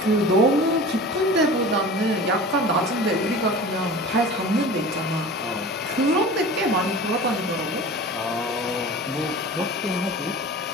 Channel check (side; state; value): both; normal; correlation 0.37